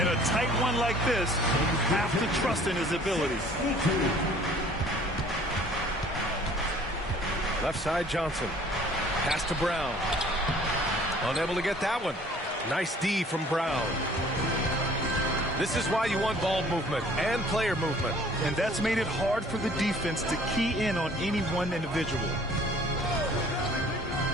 a tight one like this, you have to trust in his abilities. Left side, Johnson. Pass to Brown. Unable to get that one. Nice D from Brown. This is why you want ball movement and player movement. And that's made it hard for the defense to key in on any one individual.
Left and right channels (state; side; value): normal; both; correlation 0.53